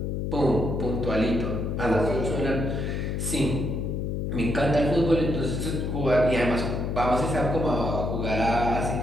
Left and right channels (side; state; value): left; noise; hum, 2 dB below the sound